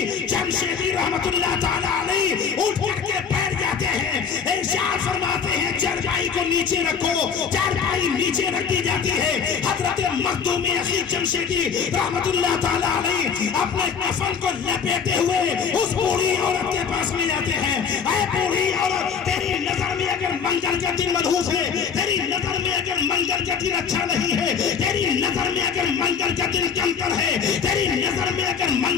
جمشیدی رحمت اللہ تعالیٰ علیہ اٹھ کر کے بیٹھ جاتے ہیں، ارشاد فرماتے ہیں چارپائی کو نیچے رکھو، چارپائی نیچے رکھ دی جاتی ہے، حضرت مخدومی اخی جمشیدی رحمت اللہ تعالیٰ علیہ اپنے کفن کو لپیٹے ہوئے اس بوڑھی عورت کے پاس میں جاتے ہیں، اے بوڑھی عورت، تیری نظر میں اگر منگل کا دن منحوس ہے، تیری نظر میں اگر منگل کا دن اچھا نہیں ہے، تیری نظر میں اگر منگل کا دن کمتر ہے، تیری نظر میں اگر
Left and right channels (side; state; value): right; quieter; 6.6 dB